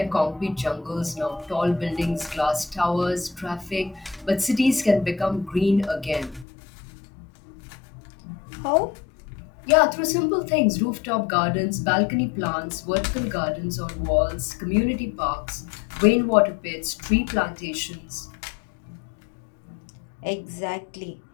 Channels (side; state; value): right; drops out; at 6.5 s